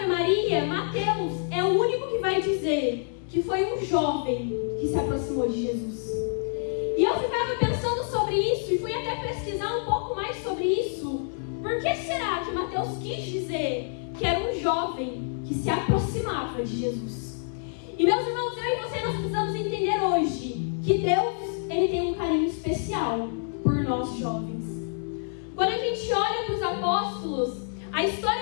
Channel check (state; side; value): silent; right; 60 dB below the other